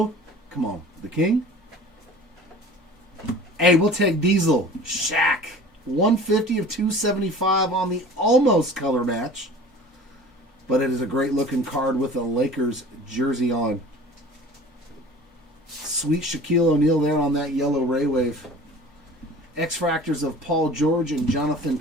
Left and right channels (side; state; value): both; normal; correlation 0.43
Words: Come on. The King. Hey, we'll take Diesel. Shaq. 150 of 275 on the almost color match. But it is a great looking card with a Lakers jersey on. Sweet Shaquille O'Neal there on that yellow Ray Wave. X-Fractors of Paul George and Jonathan